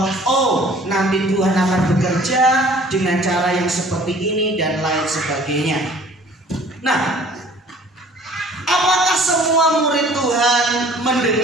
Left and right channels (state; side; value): normal; both; correlation 0.52